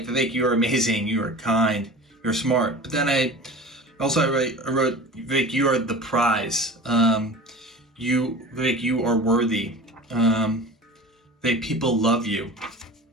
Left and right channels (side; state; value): both; normal; correlation 0.37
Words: Vivek, you are amazing, you are kind, you're smart. But then I wrote, Vivek, you are the prize. Vivek, you are worthy. Vivek, people love you.